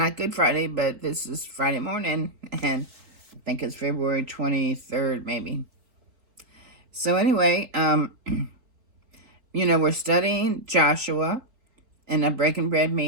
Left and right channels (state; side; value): late; left; 3.9 ms